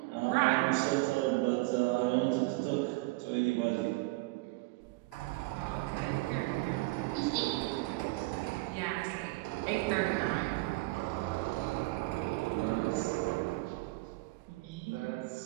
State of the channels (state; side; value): quieter; left; 22.8 dB